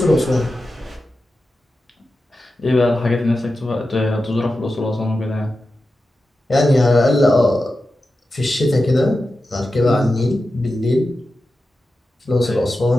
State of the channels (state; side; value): normal; both; correlation 0.92